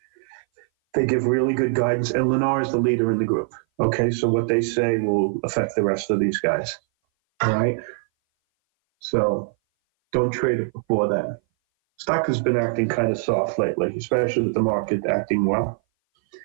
They give really good guidance, and Lennar is the leader in the group. Okay, so what they say will affect the rest of these guys. All right? So don't trade it before that. Stock has been acting kind of soft lately, especially with the market acting well.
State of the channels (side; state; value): left; silent; 58 dB below the other